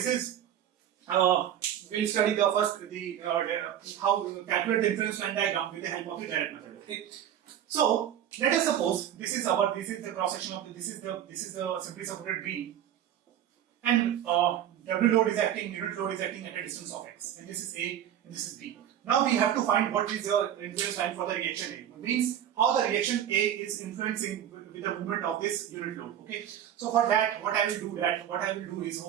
is we'll study the first how to calculate the inference line diagram with the help of the direct method. Okay, so let us suppose this is the cross section of this is the simply supported beam, and W load is acting, unit load is acting at a distance of x, and this is A and this is B. Now we have to find what is the influence line for the reaction A. It means how the reaction A is influencing with the movement of this unit load. Okay, so for that, what I will do is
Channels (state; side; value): quieter; left; 10.4 dB